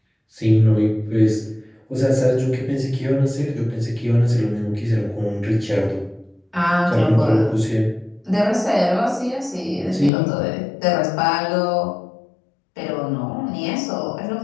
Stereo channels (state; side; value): drops out; right; at 10.1 s